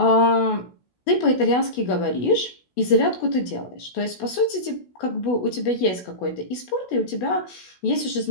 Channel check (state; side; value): late; right; 16 ms